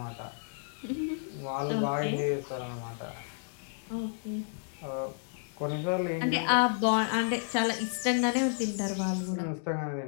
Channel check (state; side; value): silent; right; digital silence